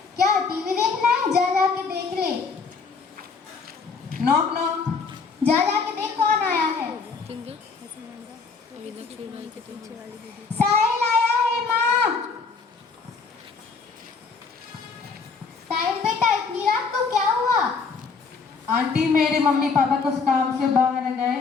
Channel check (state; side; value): quieter; right; 4.9 dB